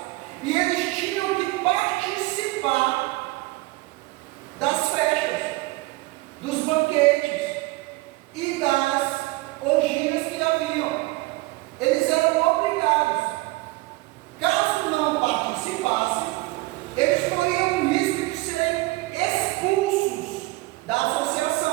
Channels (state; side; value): quieter; left; 21.4 dB